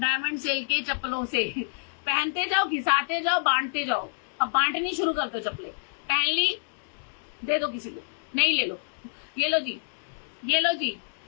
सेल के चप्पलों से पहनते जाओ, घिसाते जाओ, बांटते जाओ। अब बांटनी शुरू कर दो चप्पलें, पहन ली, दे दो किसी को, नहीं ले लो, ये लो जी, ये लो जी।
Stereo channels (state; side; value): silent; right; 60 dB below the other